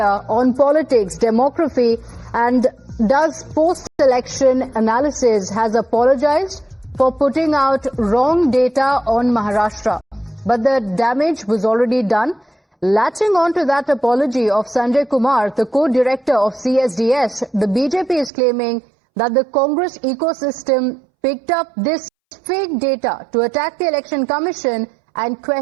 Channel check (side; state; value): left; drops out; at 18.3 s